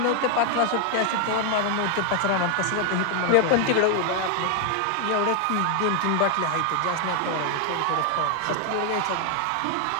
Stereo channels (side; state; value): both; different; correlation 0.00